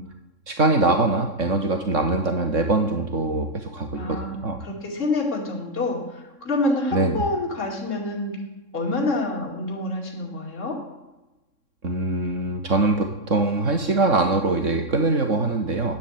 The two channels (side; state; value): left; late; 3.6 ms